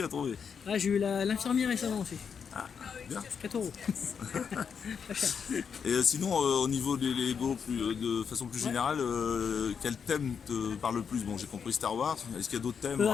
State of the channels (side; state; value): right; quieter; 6.7 dB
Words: à trouver. Ah, j'ai eu l'infirmière récemment aussi. Ah, bien. 4 euros. Pas cher. Et sinon, au niveau des Lego, de façon plus Ouais. générale, quel thème te parle le plus? Bon, j'ai compris Star Wars. Est-ce qu'il y a d'autres thèmes